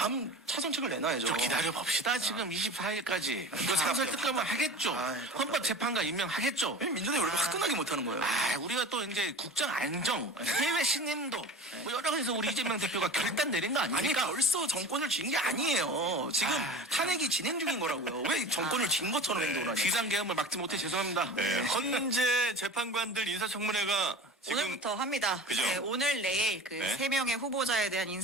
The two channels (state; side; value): normal; both; correlation 0.36